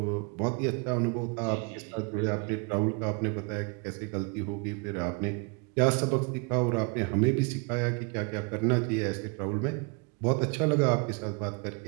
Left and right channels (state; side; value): quieter; left; 33.4 dB